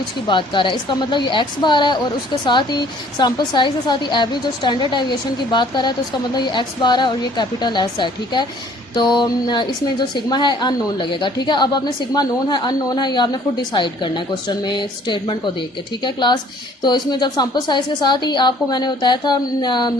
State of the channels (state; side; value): normal; both; correlation 0.57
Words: की बात कर रहा है। इसका मतलब ये एक्स बार है, और उसके साथ ही सैम्पल साइज़ के साथ ही एवरेज और स्टैंडर्ड एविएशन की बात कर रहा है, तो इसका मतलब ये एक्स बार है और ये कैपिटल एस है। ठीक है, तो इसमें जो सिग्मा है अननोन लगेगा। ठीक है, अब आपने सिग्मा नोन है अननोन है ये आपने खुद डिसाइड करना है क्वेश्चन में स्टेटमेंट को देख के। ठीक है क्लास, तो इसमें जब सैम्पल साइज़ के साथ ही आपको मैंने बताया था